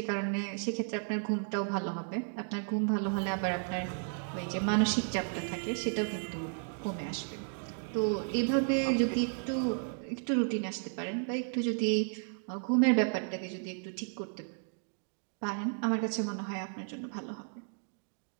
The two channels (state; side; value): silent; left; 55 dB below the other